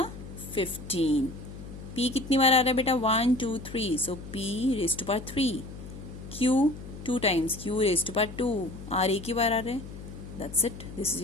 15. p कितनी बार आ रहा है बेटा, 1 2 3, so p raised to power 3. q 2 times, q raised to power 2, r एक ही बार आ रहा है. That's it. This is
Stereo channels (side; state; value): left; noise; hum, 13 dB below the sound